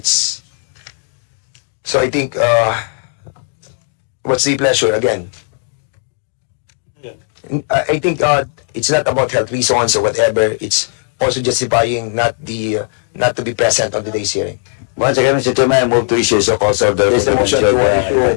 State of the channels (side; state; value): right; silent; 61 dB below the other